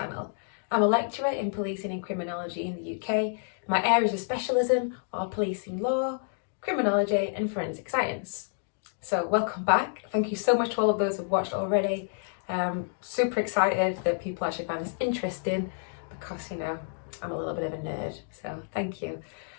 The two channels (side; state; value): right; silent; digital silence